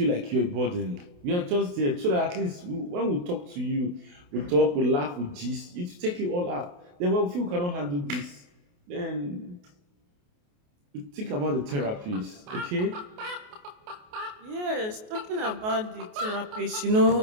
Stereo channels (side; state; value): left; late; 28 ms